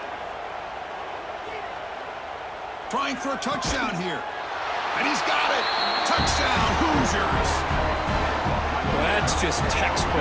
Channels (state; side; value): identical; both; correlation 1.00